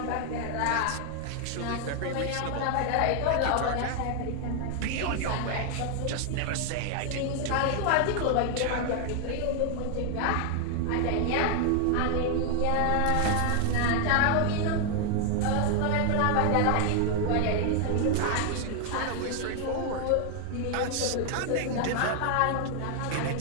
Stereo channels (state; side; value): different; both; correlation 0.00